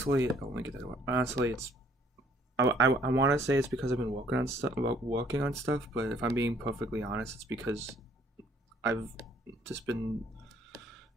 oh, let me get that away. Honestly, it's I want to say it's because I've been working on stuff, but if I'm being perfectly honest, it's because I've just been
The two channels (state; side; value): normal; both; correlation 0.61